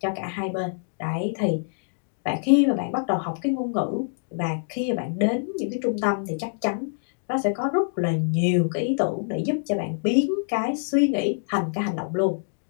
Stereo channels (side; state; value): right; silent; digital silence